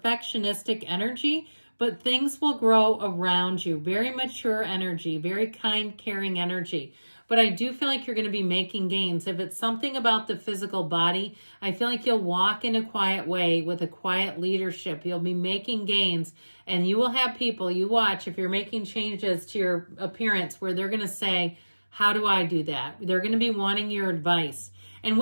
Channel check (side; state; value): both; inverted; correlation -1.00